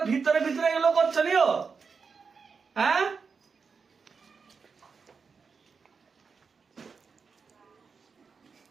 ভিতরে ভিতরে এগুলো করছো নিও। হ্যাঁ,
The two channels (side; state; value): left; quieter; 5.3 dB